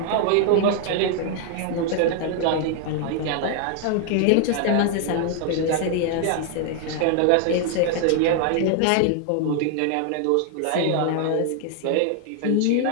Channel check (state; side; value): different; both; correlation 0.00